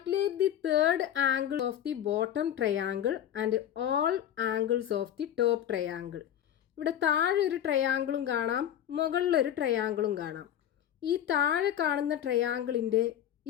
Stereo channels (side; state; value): right; quieter; 10.6 dB